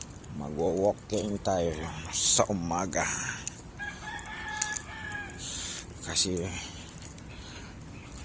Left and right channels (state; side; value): identical; both; correlation 1.00